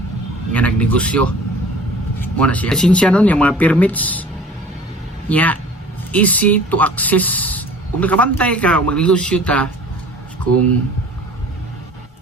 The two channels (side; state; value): both; normal; correlation 0.46